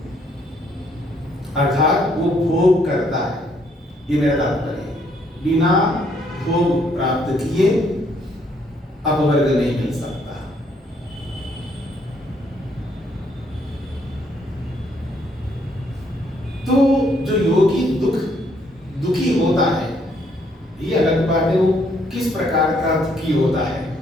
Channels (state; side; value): normal; both; correlation 0.69